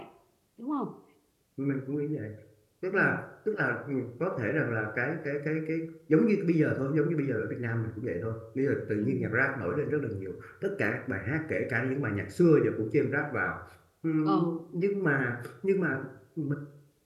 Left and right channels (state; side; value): identical; both; correlation 1.00